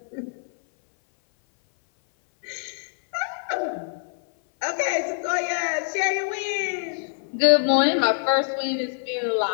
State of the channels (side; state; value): right; silent; 57 dB below the other